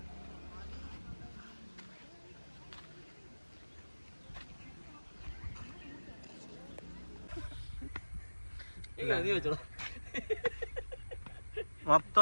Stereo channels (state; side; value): inverted; both; correlation -1.00